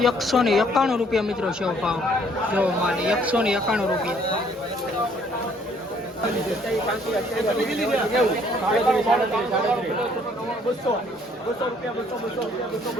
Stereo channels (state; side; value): normal; both; correlation 0.63